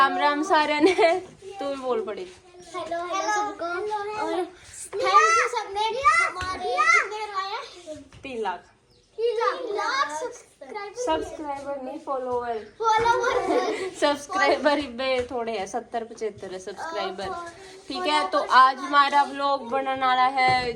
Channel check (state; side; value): identical; both; correlation 1.00